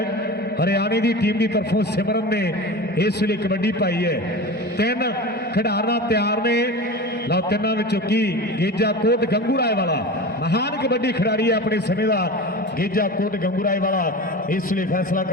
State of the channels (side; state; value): both; normal; correlation 0.30